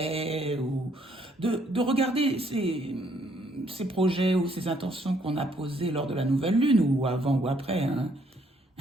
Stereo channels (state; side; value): normal; both; correlation 0.68